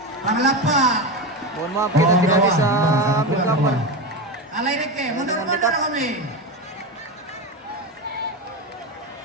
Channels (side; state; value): both; normal; correlation 0.18